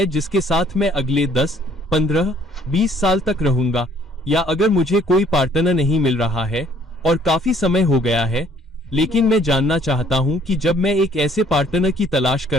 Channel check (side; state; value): both; normal; correlation 0.61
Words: जिसके साथ मैं अगले 10, 15, 20 साल तक रहूंगा। या अगर मुझे कोई पार्टनर नहीं मिल रहा है और काफी समय हो गया है, लेकिन मैं जानना चाहता हूं कि जब मैं एक ऐसे पार्टनर की तलाश